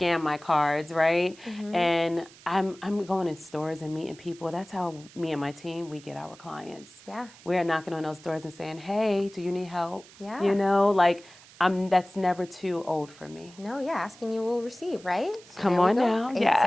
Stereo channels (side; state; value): right; noise; hiss, 22 dB below the sound